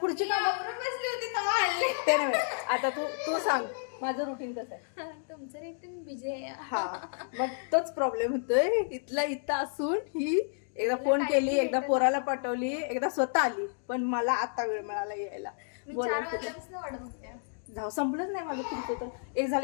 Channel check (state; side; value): silent; right; digital silence